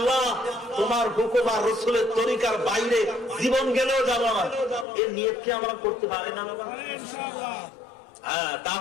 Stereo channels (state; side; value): drops out; right; at 4.9 s